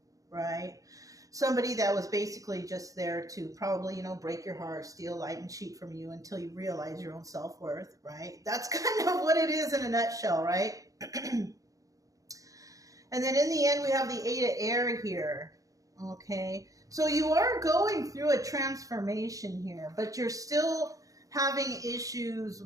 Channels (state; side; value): late; left; 0.17 ms